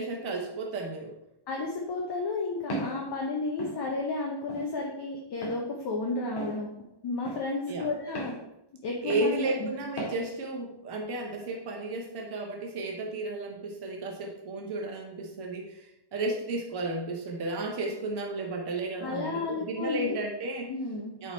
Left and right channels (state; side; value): late; right; 1.1 ms